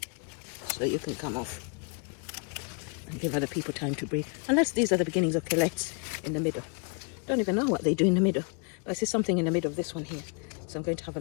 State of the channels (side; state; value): right; quieter; 36.3 dB